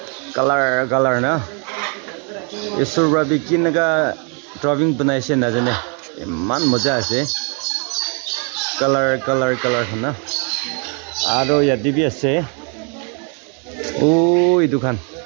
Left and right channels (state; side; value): quieter; left; 37.4 dB